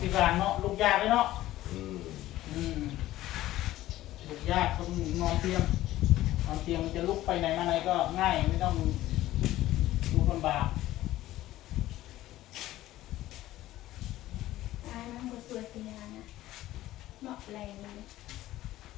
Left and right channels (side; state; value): right; quieter; 15.2 dB